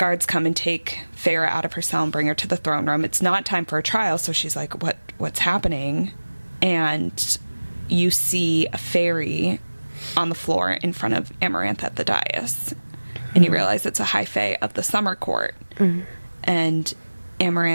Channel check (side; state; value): both; inverted; correlation -1.00